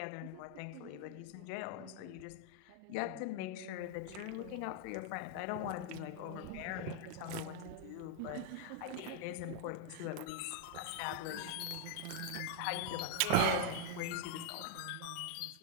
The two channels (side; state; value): both; different; correlation -0.01